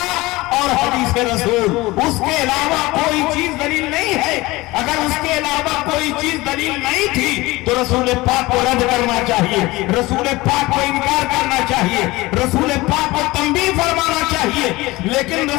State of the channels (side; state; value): right; quieter; 20.6 dB